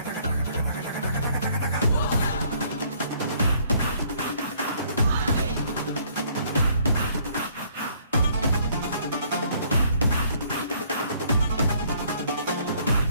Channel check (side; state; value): both; inverted; correlation -0.63